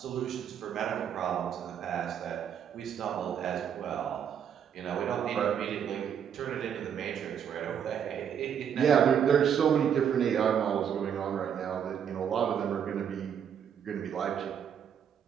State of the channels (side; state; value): left; quieter; 8.4 dB